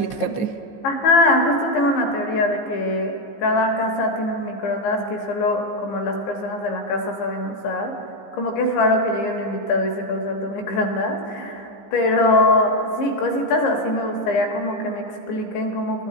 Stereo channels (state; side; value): late; right; 15 ms